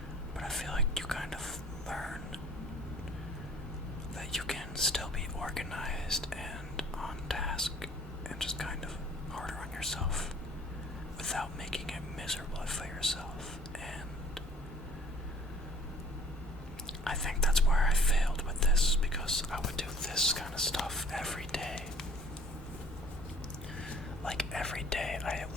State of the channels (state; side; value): normal; both; correlation 0.53